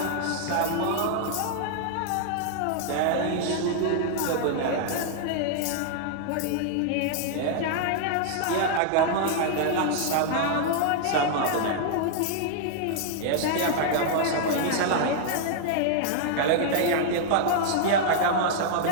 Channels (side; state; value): both; different; correlation -0.01